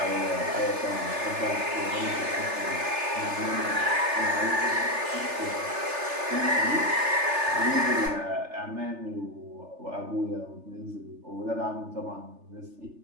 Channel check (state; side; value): late; left; 3.4 ms